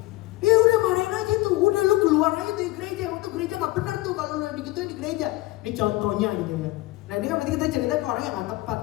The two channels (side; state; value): right; quieter; 19.2 dB